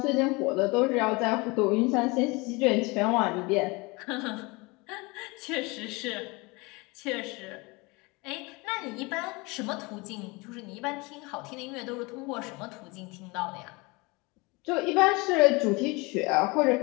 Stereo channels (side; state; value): right; quieter; 25.9 dB